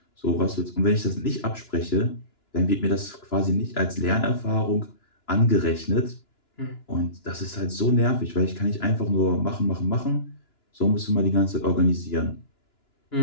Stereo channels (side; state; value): right; late; 2.9 ms